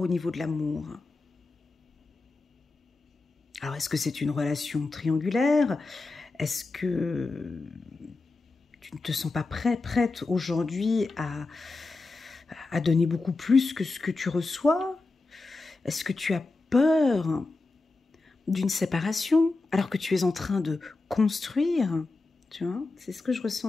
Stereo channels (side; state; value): right; quieter; 3.5 dB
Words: niveau de l'amour. Alors, est-ce que c'est une relation triangulaire? Est-ce que tu ne te sens pas prête aujourd'hui à donner beaucoup plus que ce que tu reçois? Est-ce que tu as peur d'une séparation, alors que tu es en train de construire, tu vois, c'est ce que je